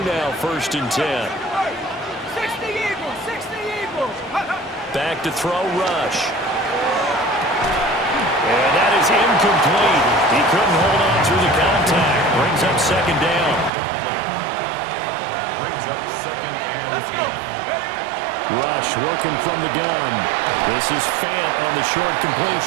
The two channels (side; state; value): left; drops out; at 13.7 s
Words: now, first and 10. 60 Eagles, 60 Eagles. Back to throw, Rush. And that is incomplete. He couldn't hold on through the contact. Brings up second down. Rush working from the gun. This is Fant on the short